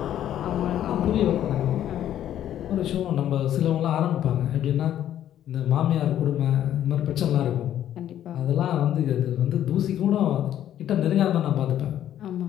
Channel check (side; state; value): right; quieter; 11.3 dB